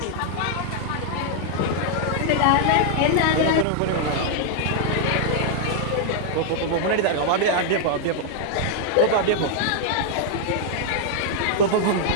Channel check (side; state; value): both; different; correlation 0.00